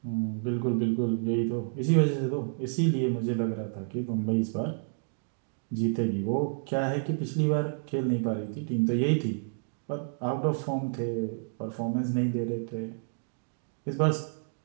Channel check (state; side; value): silent; left; digital silence